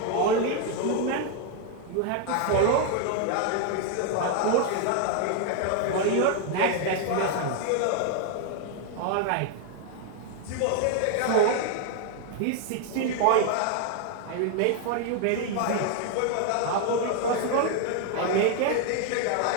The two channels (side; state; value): both; different; correlation 0.00